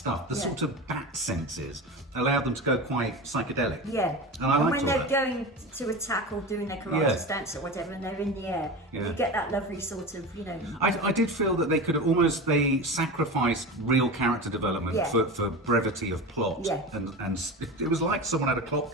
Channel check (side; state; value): both; normal; correlation 0.27